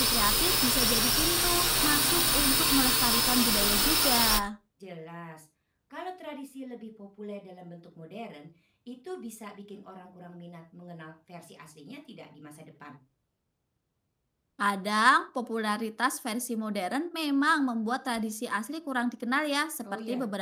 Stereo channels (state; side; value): identical; both; correlation 1.00